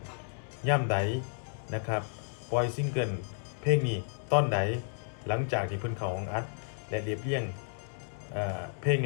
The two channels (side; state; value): right; silent; 56 dB below the other